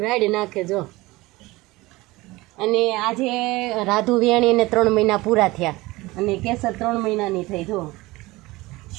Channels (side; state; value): left; quieter; 20.7 dB